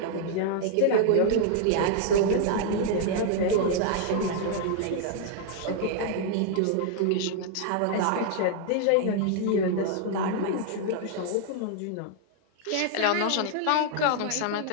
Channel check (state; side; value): different; both; correlation -0.01